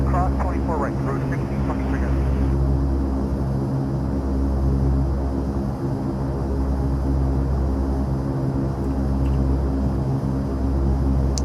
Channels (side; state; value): both; identical; correlation 1.00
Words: cross 24 right, route 1623 guys.